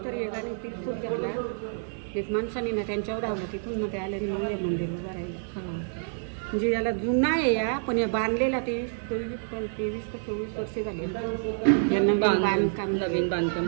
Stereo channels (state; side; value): silent; left; digital silence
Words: एकाने तिरफूट घातला, एक माणसाने ना त्यांच्यावर धावलं. तिथून मग ते आल्याने मग या मंदिर उभं राहिलं. म्हणजे याला जुना आहे या, पण या बांधलेला ते 23 का 24 वर्ष झाले यांना बांधकाम, नवीन बांधकाम